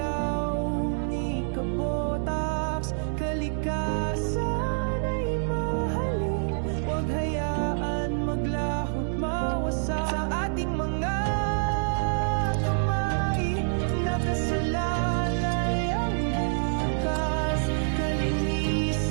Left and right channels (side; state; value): left; silent; digital silence